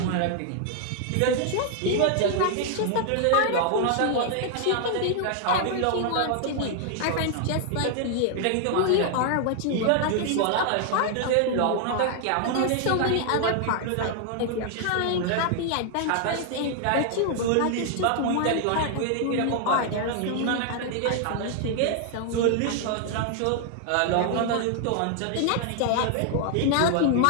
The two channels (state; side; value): different; both; correlation 0.00